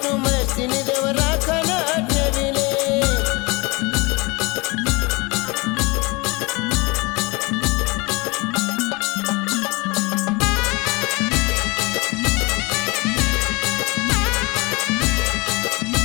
महेश तीन देव राखण ठेविले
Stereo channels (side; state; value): right; quieter; 26.2 dB